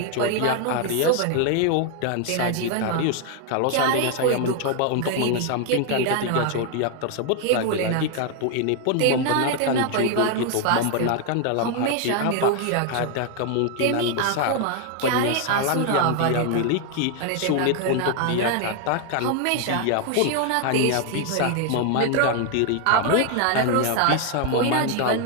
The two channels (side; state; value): both; different; correlation 0.00